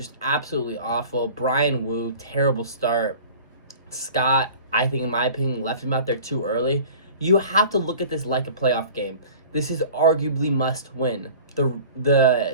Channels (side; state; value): both; inverted; correlation -0.42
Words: absolutely awful. Brian Wu, terrible start. Scott, I think in my opinion, left him out there too early. You have to look at this like a playoff game. This is arguably must win.